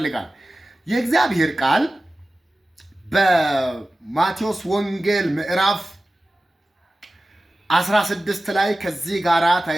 የእግዚአብሔር ቃል በማቴዎስ ወንጌል ምዕራፍ 16 ላይ ከዚህ ጋራ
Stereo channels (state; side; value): normal; both; correlation 0.95